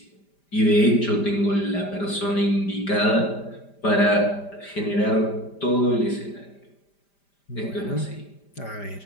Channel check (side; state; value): right; late; 5.0 ms